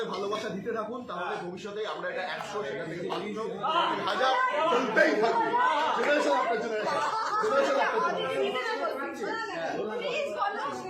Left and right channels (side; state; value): both; identical; correlation 1.00